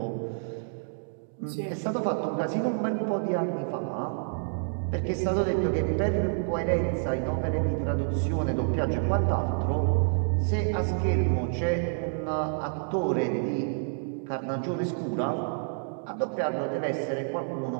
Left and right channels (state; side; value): silent; left; digital silence